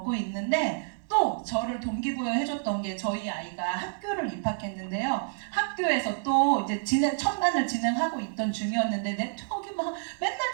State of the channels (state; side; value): silent; left; 59 dB below the other